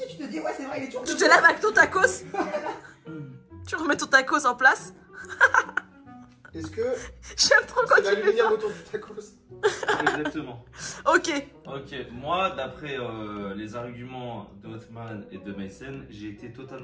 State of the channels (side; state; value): both; identical; correlation 1.00